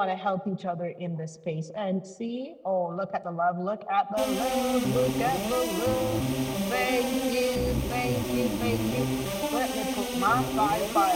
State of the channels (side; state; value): both; identical; correlation 1.00